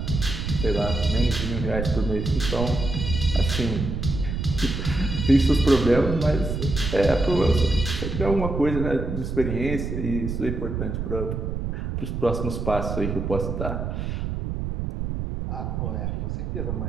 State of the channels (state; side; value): noise; right; rumble, 3 dB below the sound